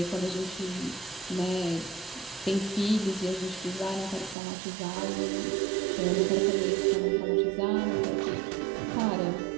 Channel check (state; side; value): drops out; left; at 4.4 s